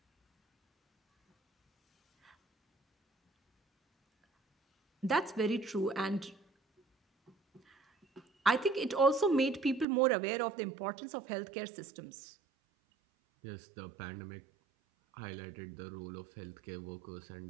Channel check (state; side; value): drops out; left; at 9.9 s